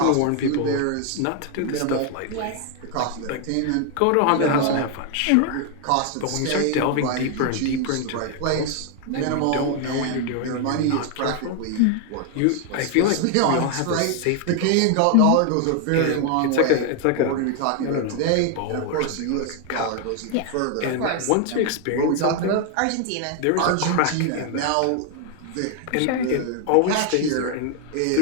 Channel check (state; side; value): different; both; correlation 0.00